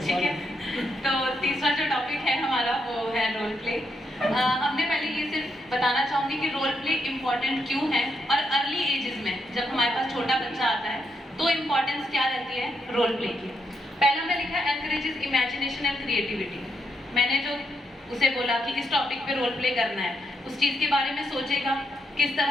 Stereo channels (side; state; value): both; normal; correlation 0.79